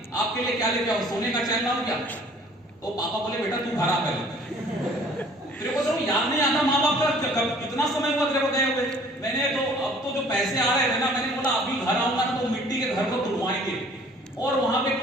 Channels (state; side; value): normal; both; correlation 0.54